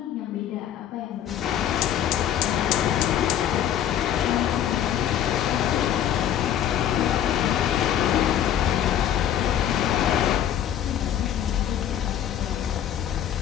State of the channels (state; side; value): quieter; right; 10.4 dB